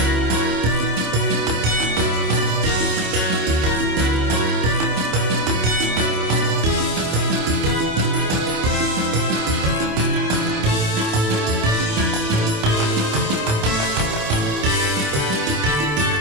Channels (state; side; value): late; left; 27 ms